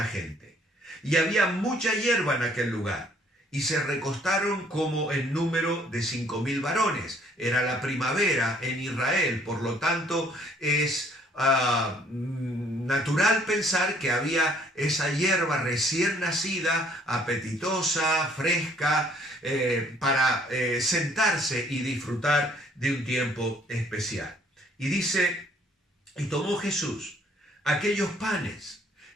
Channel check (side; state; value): both; normal; correlation 0.62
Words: gente. Y había mucha hierba en aquel lugar, y se recostaron como en número de 5,000 varones. Era la primavera en Israel, por lo tanto es natural pensar que había esa hierba recién nacida, apetitosa, fresca, para sentarse y disfrutar de un tiempo especial. Y dice: y tomó Jesús aquellos panes,